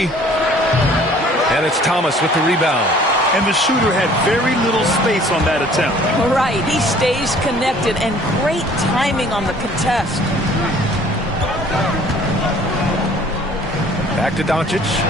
And it's Thomas with the rebound. And the shooter had very little space on that attempt. Right, he stays connected, and great timing on the contest. Back to Doncic.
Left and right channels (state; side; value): normal; both; correlation 0.54